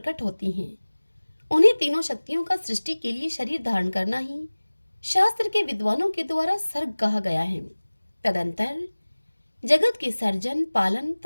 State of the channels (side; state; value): both; inverted; correlation -1.00